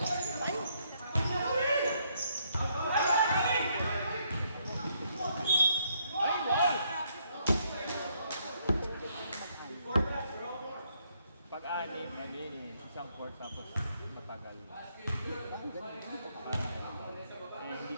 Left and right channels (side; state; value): both; inverted; correlation -0.72